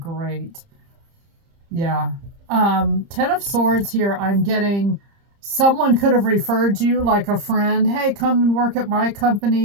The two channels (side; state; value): left; late; 30 ms